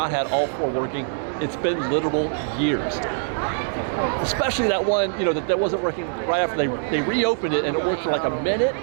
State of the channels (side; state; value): left; silent; digital silence